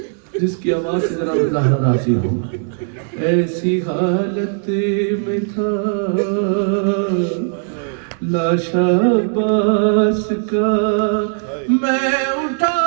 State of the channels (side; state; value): left; silent; 62 dB below the other